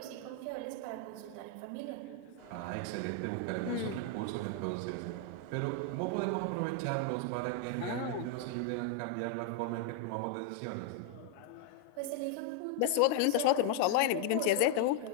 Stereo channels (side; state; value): both; different; correlation 0.00